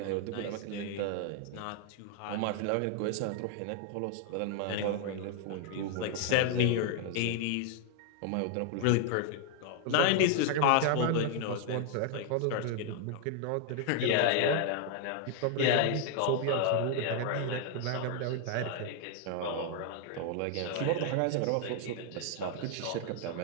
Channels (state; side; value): different; both; correlation 0.00